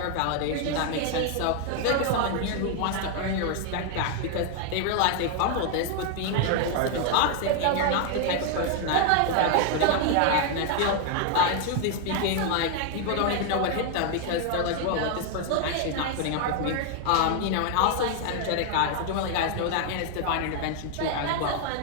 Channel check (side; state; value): both; different; correlation 0.01